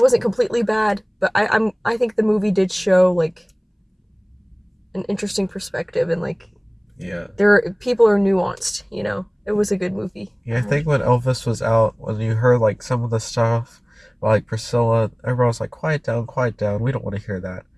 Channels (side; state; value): both; identical; correlation 1.00